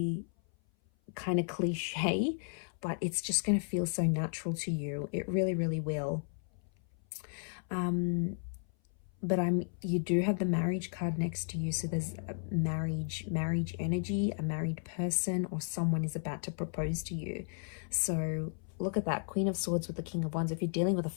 kind of cliche, but it's just going to feel so natural to you. It really, really will. But you do have the marriage card next to you, so there's a marriage energy, a married person, or someone is about to propose to you. So look at that, Queen of Swords with the King of Wands. If you're dealing with a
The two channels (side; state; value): right; silent; 55 dB below the other